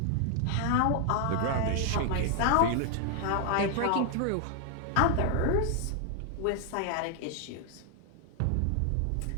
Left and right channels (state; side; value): different; both; correlation 0.00